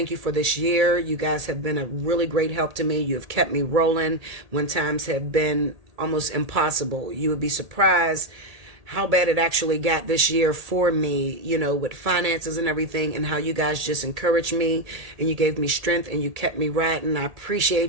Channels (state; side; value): late; left; 1.8 ms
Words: you for this year. You guys have been a really great help to me. You have kept me rolling when times have been almost impossible. You would be surprised how bad it actually got this year for me, you know, with finances and everything, and how you guys just encouraged me and you gave me strength and you kept me riding. I